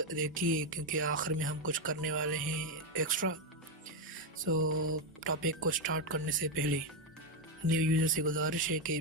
देखिए क्योंकि आखिर में हम कुछ करने वाले हैं एक्स्ट्रा। टॉपिक को स्टार्ट करने से पहले न्यू यूज़र से गुजारिश है कि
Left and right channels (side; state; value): both; normal; correlation 0.06